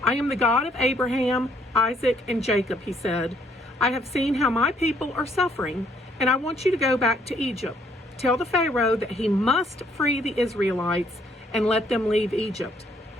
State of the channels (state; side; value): normal; both; correlation 0.67